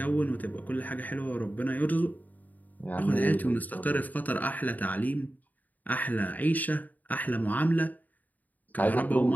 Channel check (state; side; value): late; right; 0.080 ms